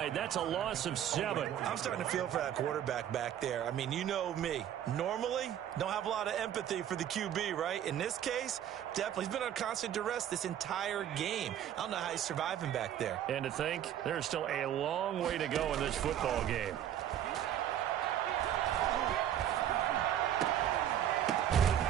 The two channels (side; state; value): left; quieter; 10.7 dB